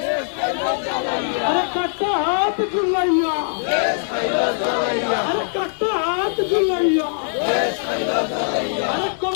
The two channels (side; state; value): right; silent; digital silence